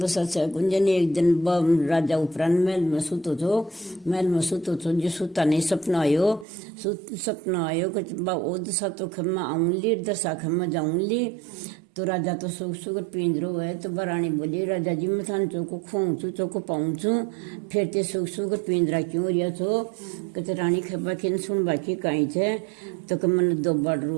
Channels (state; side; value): drops out; left; at 6.5 s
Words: सच है गुंजन एक दिन राजा उपरांत महल में सुतो छो जो सुता नहीं सपना आयो कुछ बा ओद सा तो खम्मा आऊंली दशा खम्मा जाऊंली। तो राजा तो सुख पिंजरो है तो बरानी बोली राजा जी मैं थान चौको खोंचू चौको पाऊंचू फिर ते सुख पिंजरा क्यों रिया छो कहते रानी खबा खिन सुन बाकी कहीं छे तो कि मन दो बड़